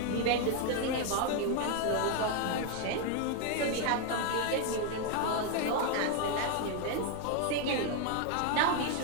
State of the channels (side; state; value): both; different; correlation 0.00